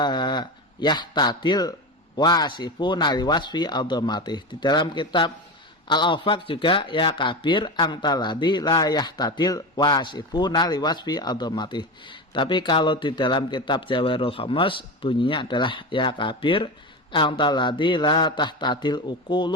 tadil wasifuna liwasfi aldomatih. Di dalam kitab Al-Awfaq juga ya kabir angtaladi la yahtadil wasifuna liwasfi adhamati. Tapi kalau di dalam kitab Jawahirul Khamas bunyinya adalah ya kabir angtaladi la tahtadil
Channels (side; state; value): both; normal; correlation 0.22